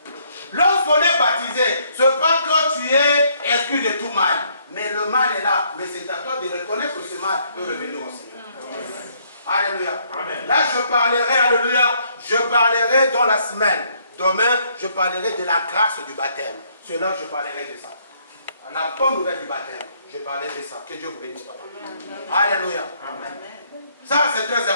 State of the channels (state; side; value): inverted; both; correlation -0.68